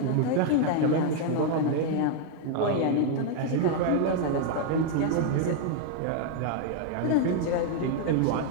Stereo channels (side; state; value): both; different; correlation 0.00